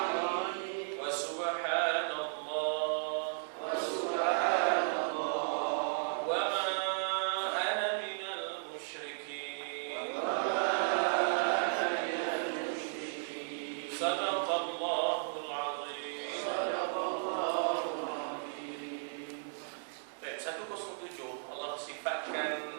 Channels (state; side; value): silent; left; digital silence